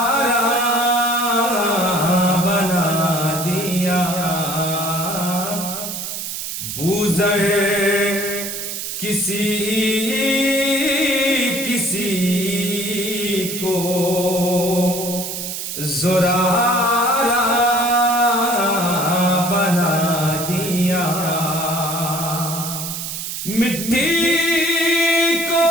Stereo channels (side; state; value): right; noise; hiss, 6 dB below the sound